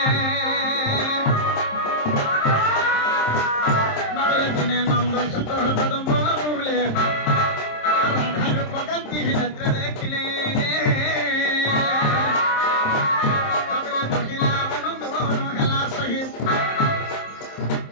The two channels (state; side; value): late; right; 27 ms